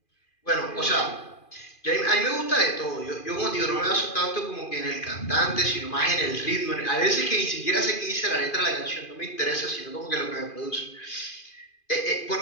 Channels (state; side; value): late; right; 2.4 ms